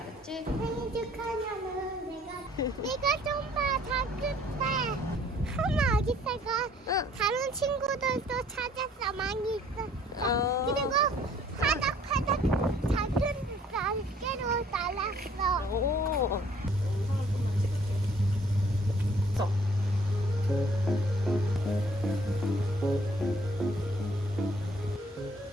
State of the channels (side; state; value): both; normal; correlation 0.59